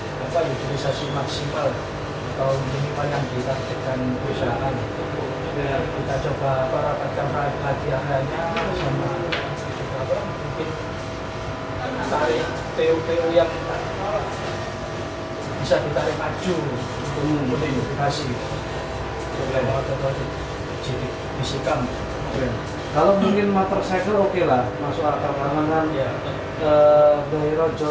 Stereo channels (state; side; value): identical; both; correlation 1.00